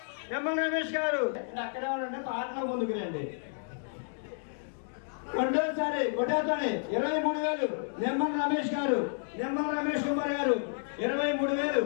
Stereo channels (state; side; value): silent; right; digital silence